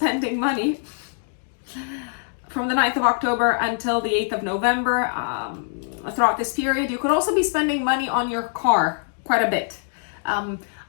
money from the 9th of October until the 8th of November. Throughout this period, you could also be spending money on your car quite a bit.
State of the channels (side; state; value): right; silent; digital silence